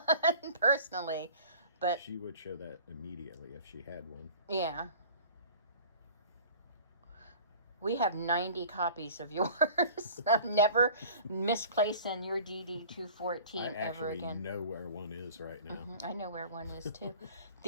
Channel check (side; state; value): both; inverted; correlation -0.45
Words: personally. But she would show that immediately if she had one. Yeah. We have 90 copies of yours. I've never misplaced in your DD-214 ever again. I actually know where one is right now. I know where one is too.